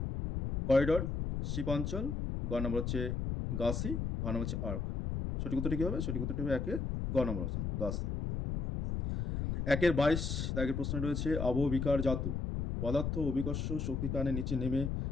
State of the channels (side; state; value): left; noise; rumble, 2 dB below the sound